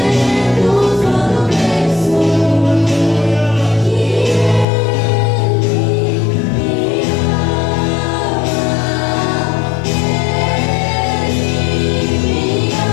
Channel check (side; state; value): right; drops out; at 4.7 s